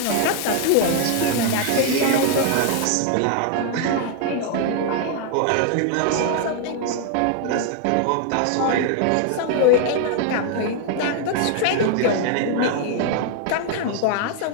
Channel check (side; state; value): both; different; correlation 0.00